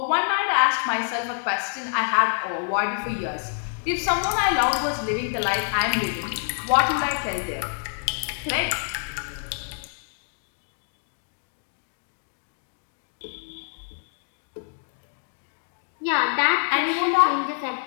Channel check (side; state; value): right; silent; 61 dB below the other